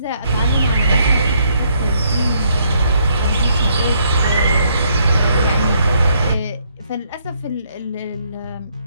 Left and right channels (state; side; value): inverted; both; correlation -0.71